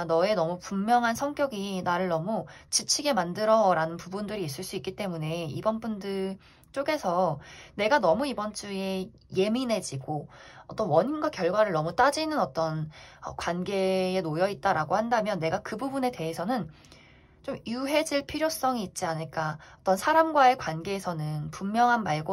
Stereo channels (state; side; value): identical; both; correlation 1.00